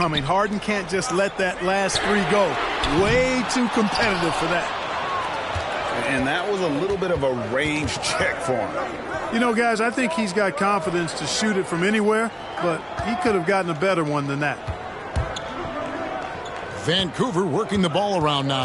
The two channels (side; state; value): both; identical; correlation 1.00